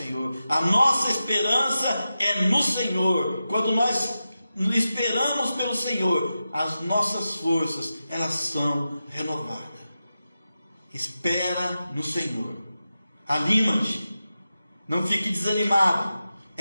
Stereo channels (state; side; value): inverted; both; correlation -0.92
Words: A nossa esperança é no Senhor. Quando nós esperamos pelo Senhor, as nossas forças, elas são renovadas. Espera no Senhor. Anima-te. Não fique desanimado.